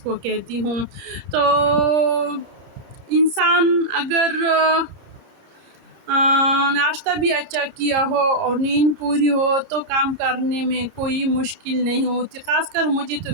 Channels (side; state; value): left; late; 31 ms